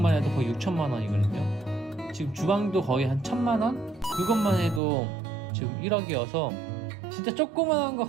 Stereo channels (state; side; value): drops out; left; at 4.8 s